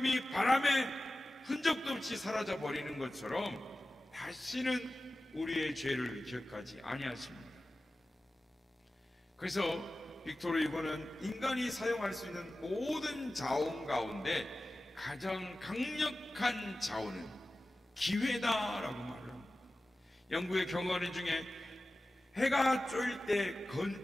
바람에 흔적도 없이 사라져 버리는 것처럼 다시는 우리의 죄를 기억하지 아니하십니다. 그래서 빅토르 유고는 인간이 사용할 수 있는 모든 자원 가운데 가장 강력한 자원은 기회다라고 말을 합니다. 영국의 경어린 중에 해가 쫄 때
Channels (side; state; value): both; normal; correlation 0.95